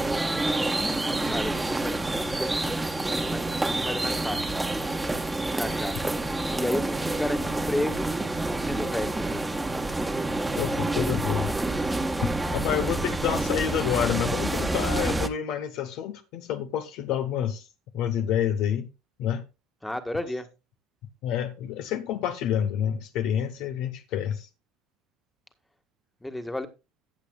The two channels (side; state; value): both; normal; correlation 0.74